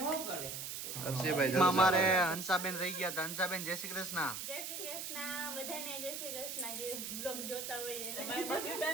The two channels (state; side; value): noise; right; hiss, 6 dB below the sound